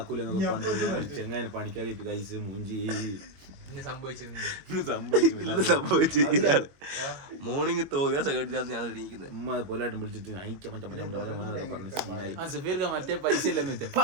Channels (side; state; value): left; late; 22 ms